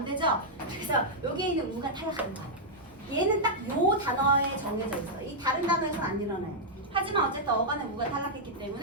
되죠. 그래서 여기에 있는 우가 탈락하는 거야. 얘는 딱 요 단어에 정해져 있어. 이 다른 단어에서는 안 일어나요. 하지만 어쨌든 어간의 우가 탈락했기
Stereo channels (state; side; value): normal; both; correlation -0.06